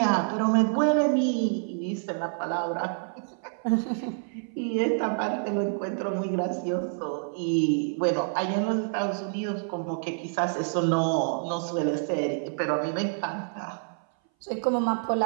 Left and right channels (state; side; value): silent; left; 58 dB below the other